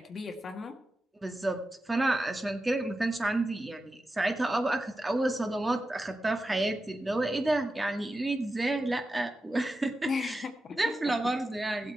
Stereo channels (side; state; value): both; normal; correlation 0.91